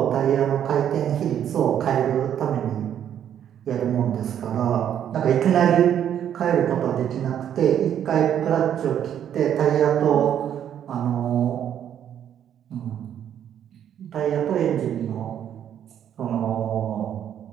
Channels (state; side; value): quieter; left; 9.7 dB